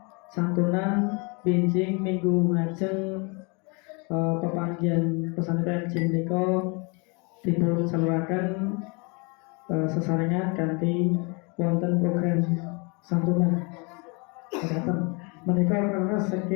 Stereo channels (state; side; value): quieter; right; 31.5 dB